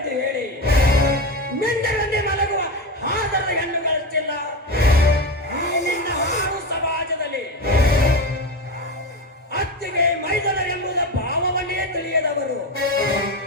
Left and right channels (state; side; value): normal; both; correlation 0.20